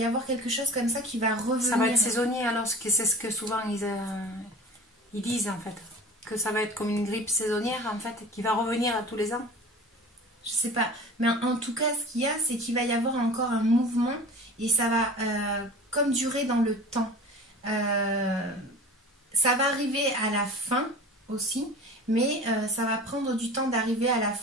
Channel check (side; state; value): both; normal; correlation 0.39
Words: avoir quelque chose comme ça qui va revenir. Ça va être saisonnier, alors c'est ce que souvent ils disent, en fait. Que ça va être comme une grippe saisonnière, en fait, qui va revenir à tous les ans. Je sais pas. Mais en tout cas, ce qu'il y a, c'est qu'il va y avoir encore un mouvement et ça va comme durer dans le temps. Ça va arriver à la fin aussi. Mais ça va prendre du temps d'arriver à la